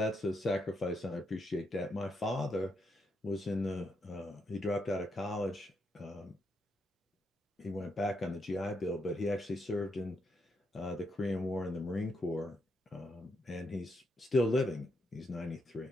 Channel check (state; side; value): normal; both; correlation 0.80